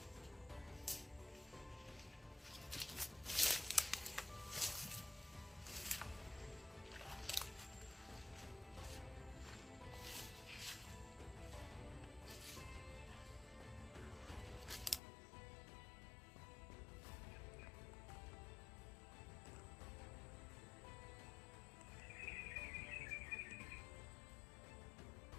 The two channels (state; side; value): drops out; right; at 15.0 s